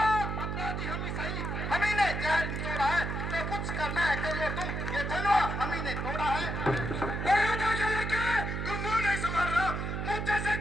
अपराधी हम ही सही, हम ही ने जहर निचोड़ा है, तो कुछ करना है कर लो तुम, ये धनवा हम ही ने तोड़ा है। तुम मुंह नहीं संभाल रहा, मुंह जैसे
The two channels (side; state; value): right; noise; hum, 3 dB below the sound